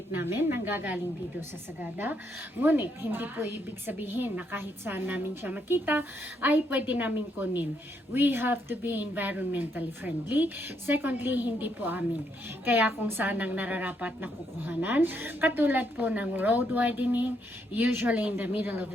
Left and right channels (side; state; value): both; normal; correlation 0.75